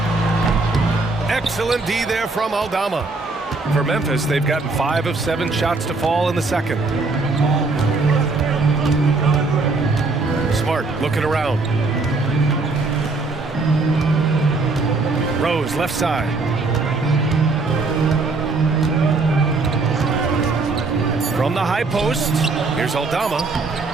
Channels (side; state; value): left; quieter; 3.7 dB